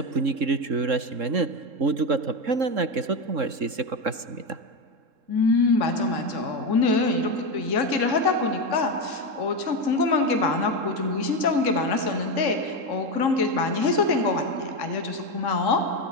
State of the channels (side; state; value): left; late; 3.7 ms